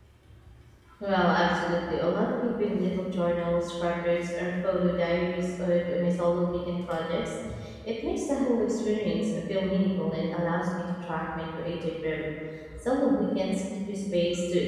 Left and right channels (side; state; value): both; identical; correlation 1.00